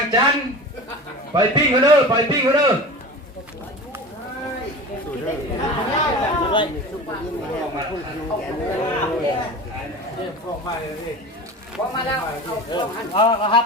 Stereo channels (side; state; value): both; normal; correlation 0.33